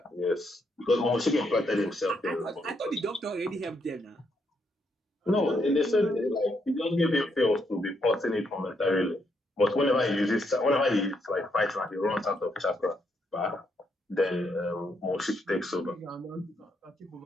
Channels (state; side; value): normal; both; correlation 0.77